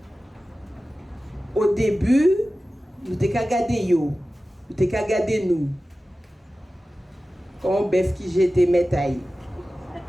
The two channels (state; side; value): normal; both; correlation 0.95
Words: Au début, nous avons regardé yo. Vous t'es qu'à garder nous. Comme bœuf qui j'étais métaille.